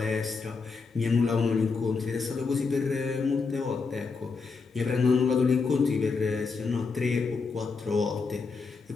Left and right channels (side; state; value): right; quieter; 4.7 dB